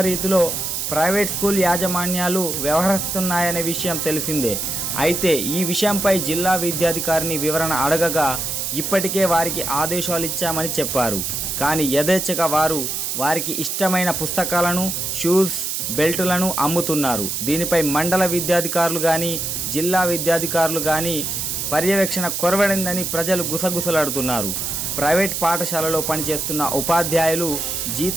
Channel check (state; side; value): noise; right; hiss, 2 dB below the sound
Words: ప్రైవేట్ స్కూల్ యాజమాన్యాలు వ్యవహరిస్తున్నాయనే విషయం తెలిసిందే. అయితే ఈ విషయంపై జిల్లా విద్యాధికారిని వివరణ అడగగా ఇప్పటికే వారికి ఆదేశాలు ఇచ్చామని చెప్పారు. కానీ యథేచ్ఛగా వారికి ఇష్టమైన పుస్తకాలను, షూస్, బెల్టులను అమ్ముతున్నారు. దీనిపై మండల విద్యాధికారులు కానీ జిల్లా విద్యాధికారులు కానీ పర్యవేక్షణ కొరవడిందని ప్రజలు గుసగుసలాడుతున్నారు. ప్రైవేట్ పాఠశాలలో పనిచేస్తున్న ఉపాధ్యాయులు